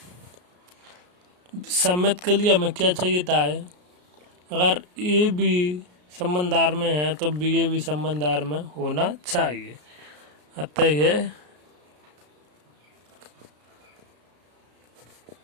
सम्मित के लिए हमें क्या चाहिए था है अगर ए भी संबंधार में है तो बी ए भी संबंधार में होना चाहिए। अतः यह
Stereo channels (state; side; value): late; left; 33 ms